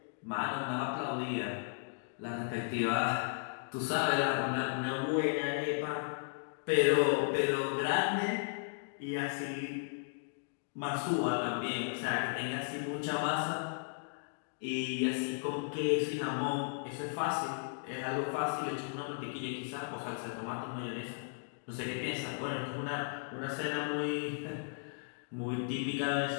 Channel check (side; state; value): right; silent; digital silence